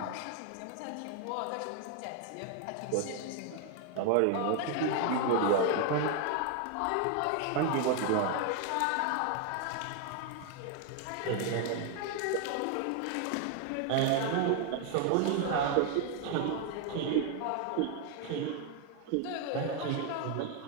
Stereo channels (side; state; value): both; different; correlation 0.01